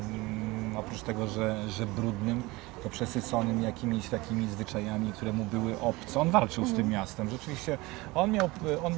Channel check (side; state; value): left; quieter; 22.2 dB